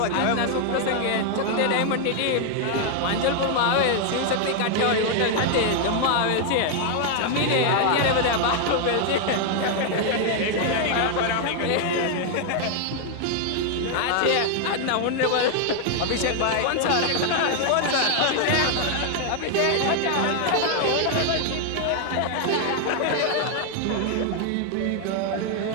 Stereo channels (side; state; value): both; different; correlation 0.00